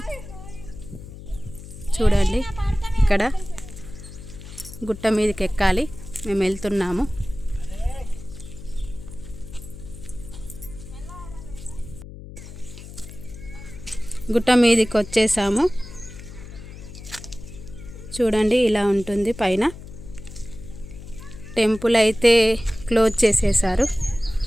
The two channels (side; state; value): left; noise; hum, 14 dB below the sound